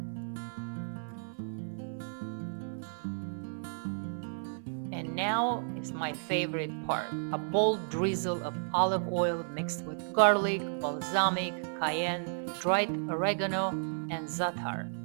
And now is my favorite part: a bold drizzle of olive oil mixed with garlic, balsamic, cayenne, dried oregano, and za'atar.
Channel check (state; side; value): silent; left; 56 dB below the other